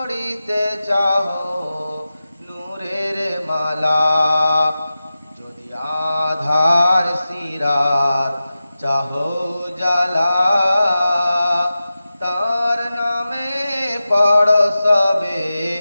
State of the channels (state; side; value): inverted; both; correlation -0.93